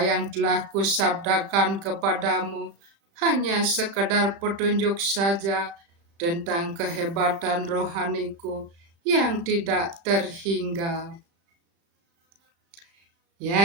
telah kusabdakan kepadamu hanya sekedar petunjuk saja tentang kehebatan rohaniku yang tidak terhingga.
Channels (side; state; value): left; late; 36 ms